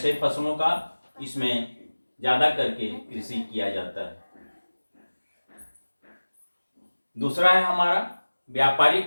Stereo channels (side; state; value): both; inverted; correlation -1.00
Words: फसलों का इसमें ज़्यादा करके कृषि किया जाता है। दूसरा है हमारा